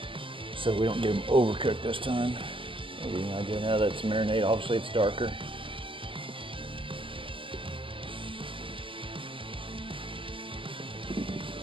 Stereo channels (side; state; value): left; late; 0.25 ms